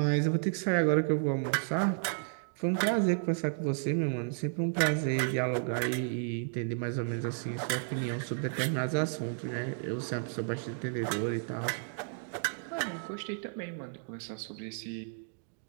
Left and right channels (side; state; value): left; silent; digital silence